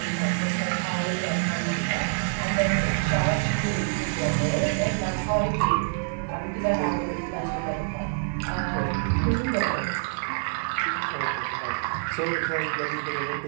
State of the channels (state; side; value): silent; left; digital silence